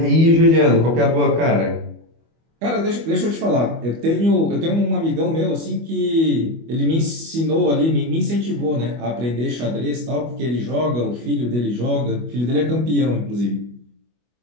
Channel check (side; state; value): left; late; 25 ms